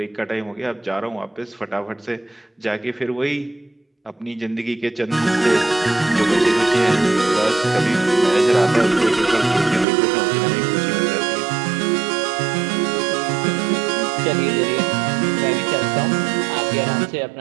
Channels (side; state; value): left; drops out; at 9.9 s